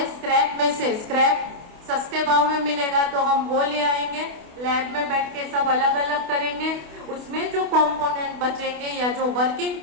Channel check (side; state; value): left; late; 28 ms